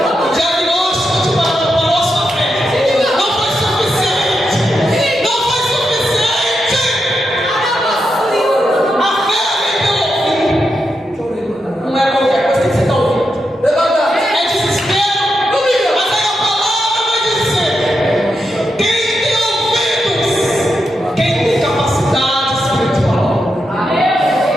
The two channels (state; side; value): normal; both; correlation 0.85